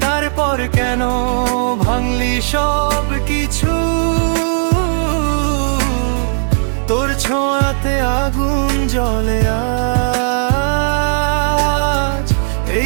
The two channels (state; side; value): silent; left; digital silence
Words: তারপর কেন ভাঙলি সব কিছু? তোর ছোঁয়াতে আগুন জ্বলে আজ,